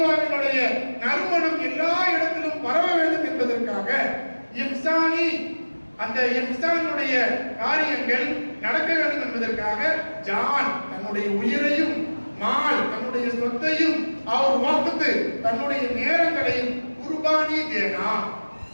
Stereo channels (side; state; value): both; inverted; correlation -1.00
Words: நறுமணம் எல்லா இடத்திலும் பரவ வேண்டும் என்பதற்காக இஹ்சானி அந்த இஹ்சானுடைய காரியங்கள் நடக்க வேண்டும் என்பதற்காக ஜான் தன்னுடைய உயிரையும் மால் தன்னுடைய சொத்தையும் அவர் வாக்குத்து தன்னுடைய நேரங்களையும் குர்பானி தேனா